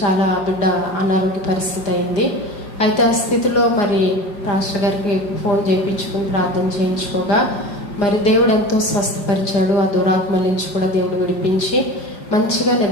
చాలా బిడ్డ అనారోగ్య పరిస్థితి అయింది. అయితే ఆ స్థితిలో మరి పాస్టర్ గారికి ఫోన్ చేయించుకుని ప్రార్థన చేయించుకోగా మరి దేవుడు ఎంతో స్వస్థపరిచాడు. ఆ దురాత్మల నుంచి కూడా దేవుడు విడిపించి మంచిగా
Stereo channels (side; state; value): right; late; 4.9 ms